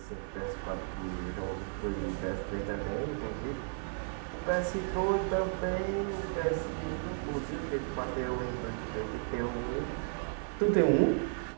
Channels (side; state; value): left; silent; 55 dB below the other